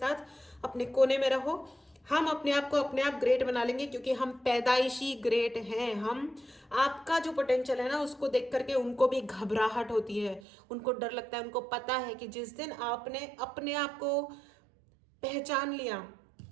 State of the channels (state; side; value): drops out; left; at 10.4 s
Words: अपने कोने में रहो। हम अपने आप को अपने आप ग्रेट बना लेंगे क्योंकि हम पैदाइशी ग्रेट हैं। हम, आपका जो पोटेंशियल है ना, उसको देख करके उनको भी घबराहट होती है, उनको डर लगता है। उनको पता है कि जिस दिन आपने अपने आप को पहचान लिया,